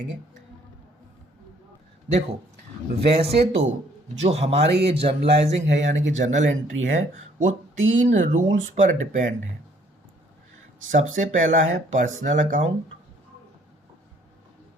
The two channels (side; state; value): both; normal; correlation 0.62